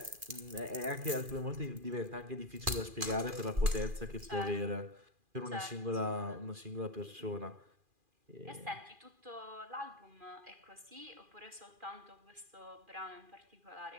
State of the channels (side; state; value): left; late; 2.4 ms